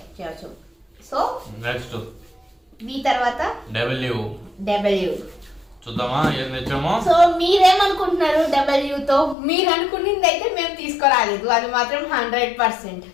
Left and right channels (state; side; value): drops out; right; at 9.3 s